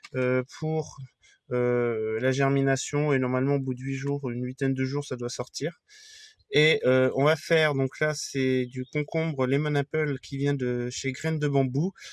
pour la germination, et normalement au bout de 8 jours, une huitaine de jours, ça doit sortir. Et on va faire, donc là c'est du concombre lemon apple qui vient de chez Graines de Bambou.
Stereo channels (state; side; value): identical; both; correlation 1.00